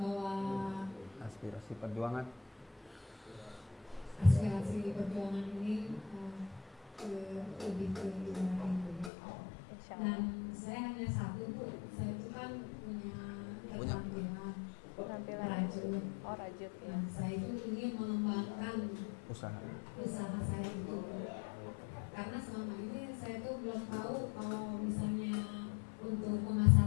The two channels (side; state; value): right; drops out; at 9.1 s